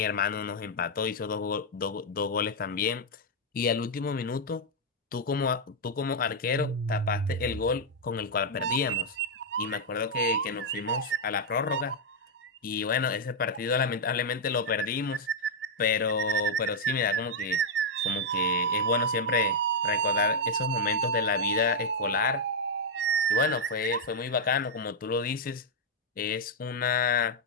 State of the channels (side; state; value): both; normal; correlation -0.03